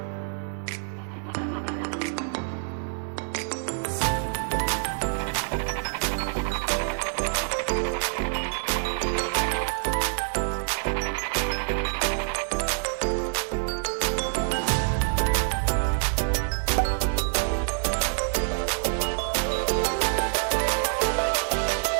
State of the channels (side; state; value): left; silent; 60 dB below the other